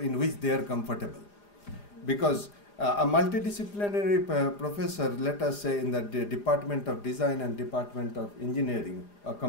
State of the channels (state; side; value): late; right; 4.9 ms